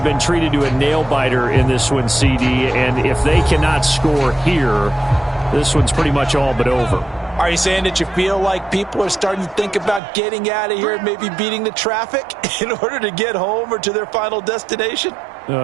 treated to a nail-biter in this one, CD. And if they cannot score here, this one's pretty much all but over. Are you saying that you feel like people are starting to think about getting out of here and maybe beating the traffic in order to get home or to their final destination?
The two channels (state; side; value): drops out; left; at 10.0 s